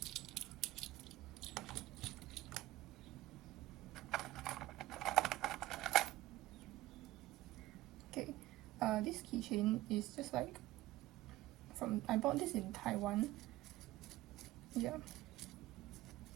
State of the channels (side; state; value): left; quieter; 16.7 dB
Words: Okay, this keychain is just like I bought this in Taiwan. Yeah.